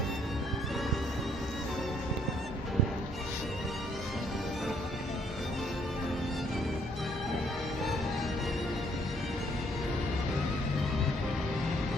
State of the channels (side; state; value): both; normal; correlation 0.67